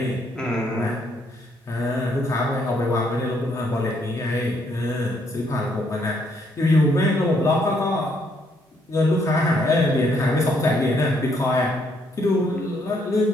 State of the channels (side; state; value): both; normal; correlation 0.71